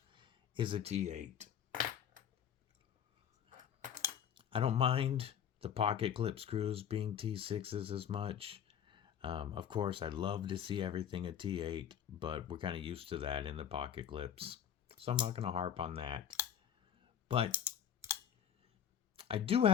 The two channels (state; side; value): quieter; right; 9.1 dB